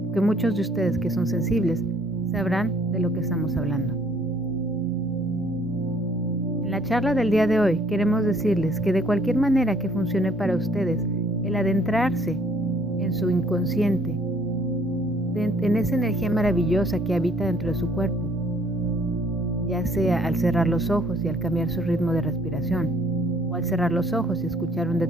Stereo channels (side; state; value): both; normal; correlation 0.61